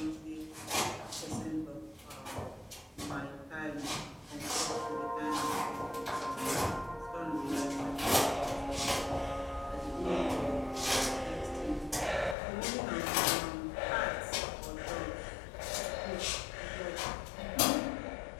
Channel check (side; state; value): right; drops out; at 12.4 s